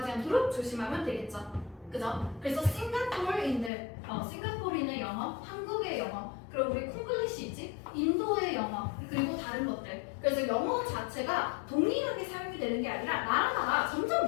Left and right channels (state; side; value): drops out; right; at 3.7 s